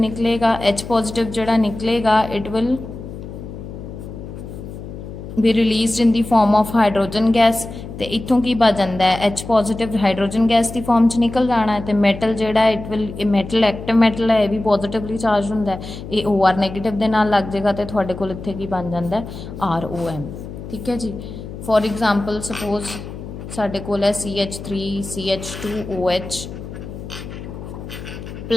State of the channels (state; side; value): noise; left; hum, 11 dB below the sound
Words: निकलेगा। H पॉजिटिव जोड़ा निकलेगा इट विल भी release in the form of hydrogen gas. तो इत्थों की बच जाता है? H पॉजिटिव हाइड्रोजन गैस की फॉर्म च निकल जाना है। तो मैटल जोड़ा it will metal active metal है, यह भी पॉजिटिवली चार्ज होंदा है, ये OR नैगेटिव के नाल लग जाएगा। तो तुहाडे कोल इत्थे की बन जाता है? ROM। ठीक है जी, फॉर एग्जाम्पल सपोज साडे कोल है CH3 CH2OH